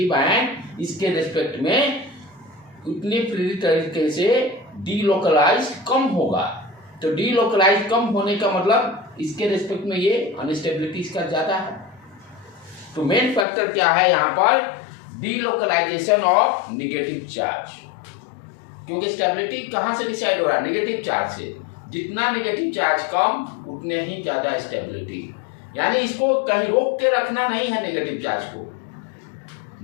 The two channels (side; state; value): right; drops out; at 13.5 s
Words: आयन इसके रिस्पेक्ट में उतनी प्रेरित तरीके से डीलोकलाइज कम होगा। तो डीलोकलाइज कम होने का मतलब इसके रिस्पेक्ट में ये अनस्टेबिलिटी इसका ज्यादा है। तो मेन फैक्टर क्या है यहाँ पर, डीलोकलाइजेशन ऑफ नेगेटिव चार्ज, क्योंकि स्टेबिलिटी कहाँ से डिसाइड हो रहा है, नेगेटिव चार्ज से। जितना नेगेटिव चार्ज कम उतने ही ज्यादा स्टेबिलिटी, यानी इसको कहीं रोक के रखना नहीं है। नेगेटिव चार्ज को,